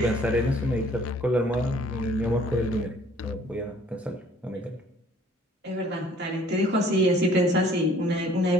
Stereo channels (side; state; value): both; normal; correlation 0.56